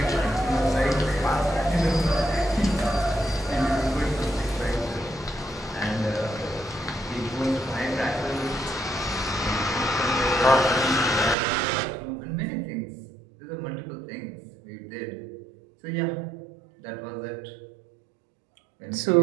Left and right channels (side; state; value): left; drops out; at 11.4 s